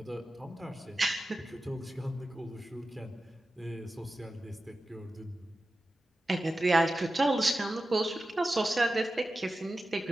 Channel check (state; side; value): normal; both; correlation 0.94